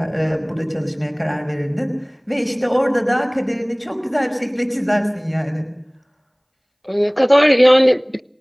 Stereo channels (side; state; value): both; identical; correlation 1.00